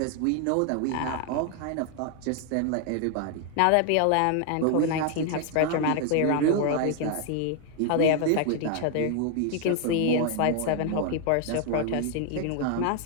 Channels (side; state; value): both; different; correlation 0.00